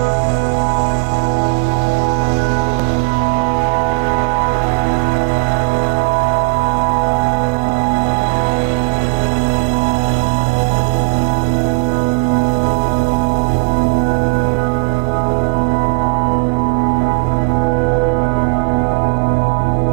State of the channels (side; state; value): left; quieter; 30.9 dB